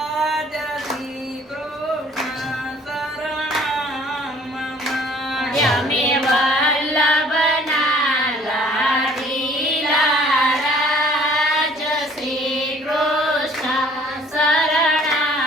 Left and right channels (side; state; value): both; normal; correlation 0.55